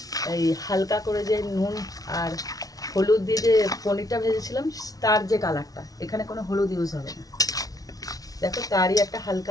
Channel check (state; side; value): late; right; 0.18 ms